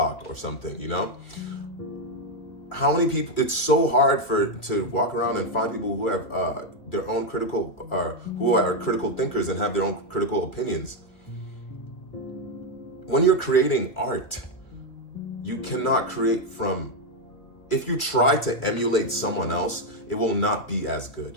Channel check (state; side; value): late; right; 2.6 ms